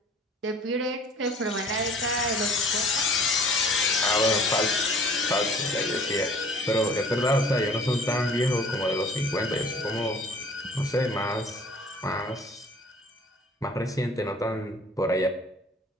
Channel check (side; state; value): both; normal; correlation 0.51